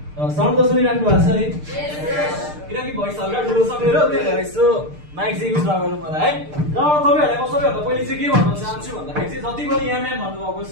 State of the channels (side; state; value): left; late; 6.6 ms